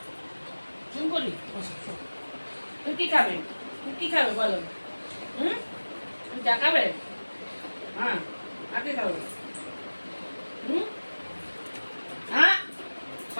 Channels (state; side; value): inverted; both; correlation -1.00